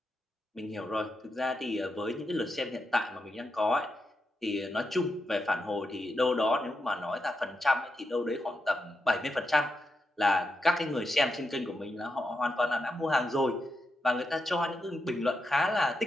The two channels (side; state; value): both; normal; correlation 0.86